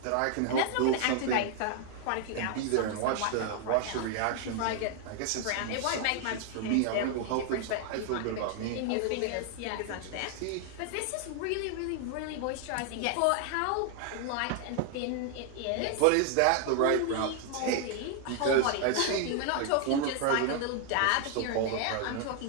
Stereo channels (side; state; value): both; different; correlation 0.00